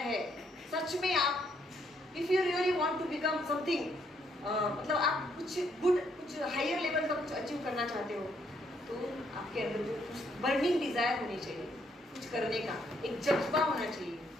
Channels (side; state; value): both; normal; correlation 0.72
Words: है, सच में आप, if you really want to become something, मतलब आप कुछ गुड, कुछ हायर लेवल का कुछ अचीव करना चाहते हो, तो आपके अंदर जो बर्निंग डिजायर होनी चाहिए, कुछ करने का एक जज्बा होना चाहिए,